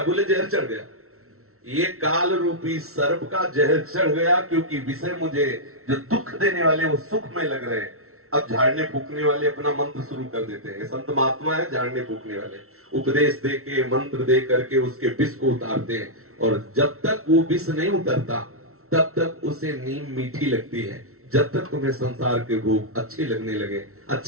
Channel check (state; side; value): late; left; 0.63 ms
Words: बोले जहर चढ़ गया। ये काल रूपी सर्प का जहर चढ़ गया, क्योंकि विषय मुझे जो दुख देने वाले वो सुखमय लग रहे हैं। अब झाड़ने फूकने वाले अपना मंत्र शुरू कर देते हैं। संत महात्मा है झाड़ने फूकने वाले, उपदेश दे के, मंत्र दे करके उसके विष को उतारते हैं। और जब तक वो विष नहीं उतरता तब तक उसे नीम मीठी लगती है। जब तक तुम्हें संसार के भोग अच्छे